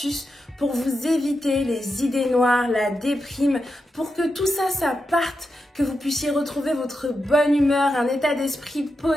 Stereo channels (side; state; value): both; normal; correlation 0.87